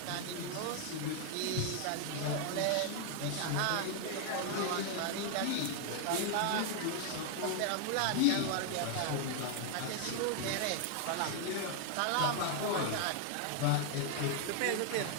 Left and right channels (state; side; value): different; both; correlation 0.00